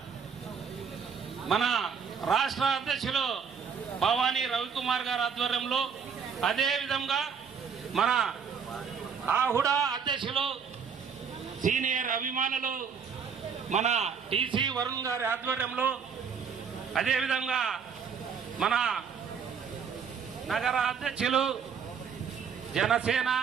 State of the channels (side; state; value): left; quieter; 6.5 dB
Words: మన రాష్ట్ర అధ్యక్షులు భవానీ రవికుమార్ గారి ఆధ్వర్యంలో, అదే విధంగా మన ఆహుడా అధ్యక్షులు సీనియర్ అభిమానులు మన టీసీ వరుణ్ గారి ఆధ్వర్యంలో, అదేవిధంగా మన నగర అధ్యక్షులు జనసేన